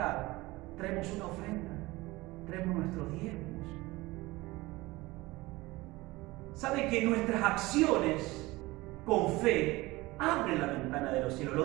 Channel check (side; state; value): left; quieter; 20.6 dB